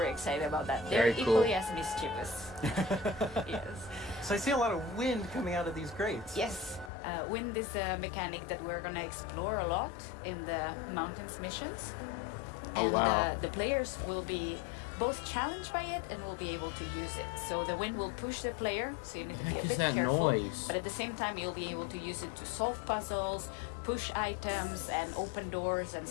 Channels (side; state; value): right; drops out; at 6.9 s